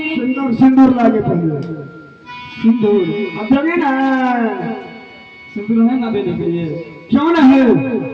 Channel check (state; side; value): identical; both; correlation 1.00